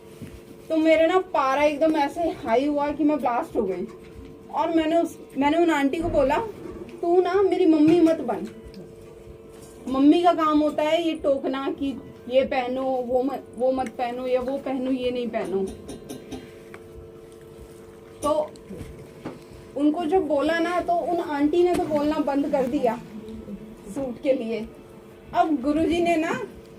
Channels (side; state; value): both; identical; correlation 1.00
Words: तो मेरे ना पारा एकदम ऐसे हाई हुआ कि मैं ब्लास्ट हो गई। और मैंने उन आंटी को बोला, तू ना मेरी मम्मी मत बन। मम्मी का काम होता है ये टोकना कि ये पहनो, वो मत पहनो, या वो पहनो ये नहीं पहनो। तो उनको जब बोला ना, तो उन आंटी ने तो बोलना बंद कर दिया सूट के लिए। अब गुरुजी ने ना